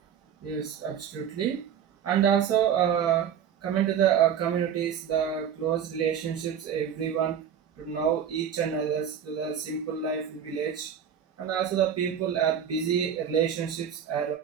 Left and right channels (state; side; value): quieter; left; 8.4 dB